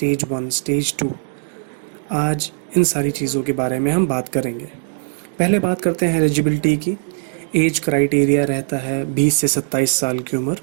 1 स्टेज 2। आज इन सारी चीज़ों के बारे में हम बात करेंगे। पहले बात करते हैं एलिजिबिलिटी की। एज क्राइटेरिया रहता है 20 से 27 साल की उम्र।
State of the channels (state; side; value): silent; left; digital silence